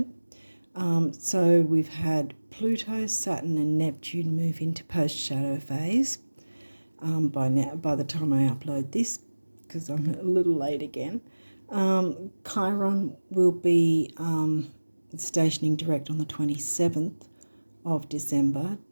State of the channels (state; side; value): inverted; both; correlation -1.00